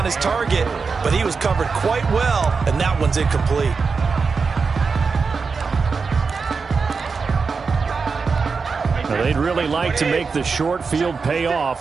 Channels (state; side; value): quieter; left; 4.9 dB